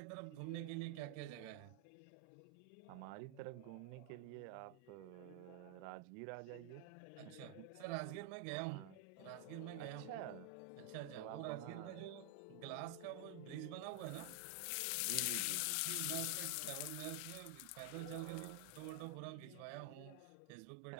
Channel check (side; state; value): both; different; correlation 0.00